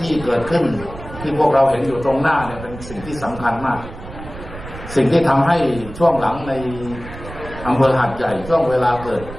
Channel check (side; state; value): right; noise; rumble, 13 dB below the sound